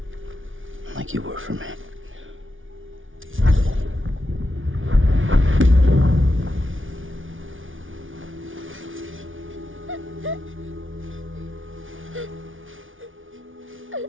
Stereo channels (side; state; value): left; late; 0.57 ms